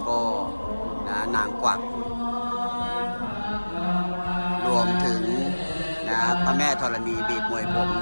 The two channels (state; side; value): inverted; both; correlation -1.00